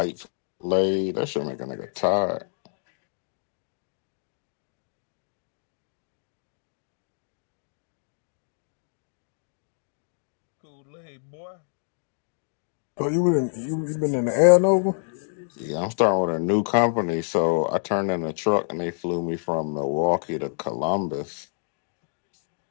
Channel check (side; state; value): right; silent; digital silence